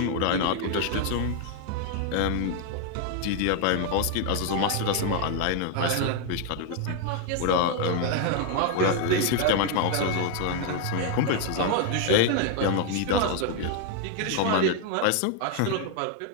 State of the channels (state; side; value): different; both; correlation 0.00